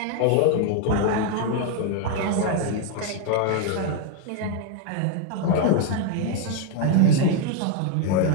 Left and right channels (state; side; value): different; both; correlation 0.01